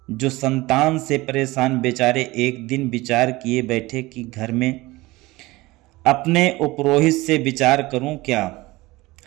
जो संतान से परेशान बेचारे एक दिन विचार किए बैठे कि घर में अपने उपरोहित से विचार करूं क्या,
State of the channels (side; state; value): left; quieter; 20.5 dB